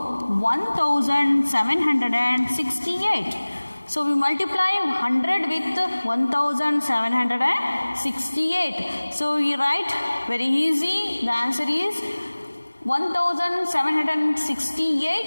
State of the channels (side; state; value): both; inverted; correlation -1.00